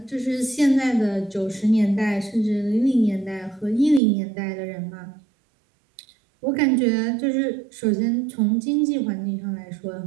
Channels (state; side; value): drops out; left; at 4.0 s